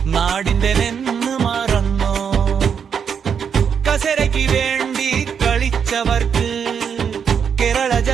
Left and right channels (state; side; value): quieter; left; 7.1 dB